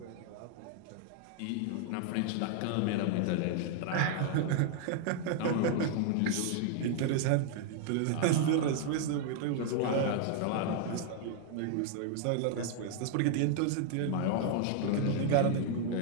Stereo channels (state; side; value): different; both; correlation 0.00